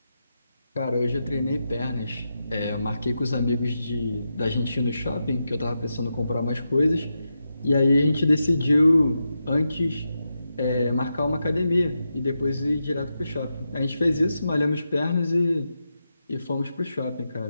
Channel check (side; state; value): both; inverted; correlation -0.87